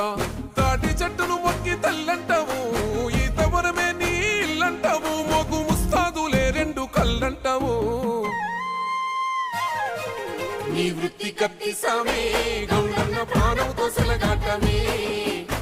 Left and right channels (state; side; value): identical; both; correlation 1.00